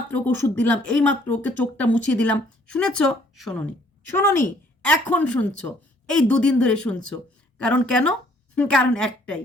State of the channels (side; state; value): both; normal; correlation 0.62